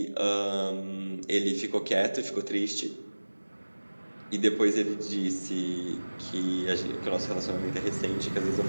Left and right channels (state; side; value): inverted; both; correlation -1.00